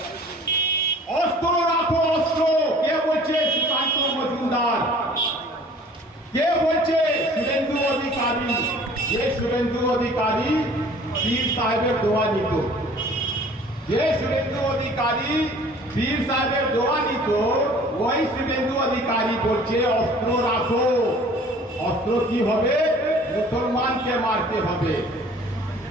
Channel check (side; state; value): both; normal; correlation 0.50